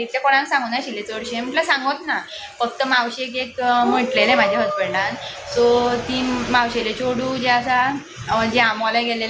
कोणाक सांगूं नाशिल्लें चडशें म्हटल्यार सांगोत ना फक्त मावशेक एक म्हटलेलें म्हाज्या हजबंडान सो ती मावशेलें चेडूं जें आसा जें आमोल्या गेलें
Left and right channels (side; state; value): both; identical; correlation 1.00